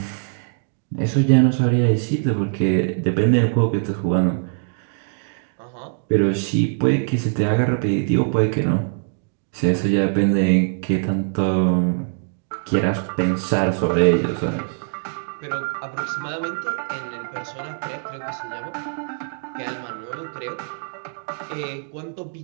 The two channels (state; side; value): silent; left; digital silence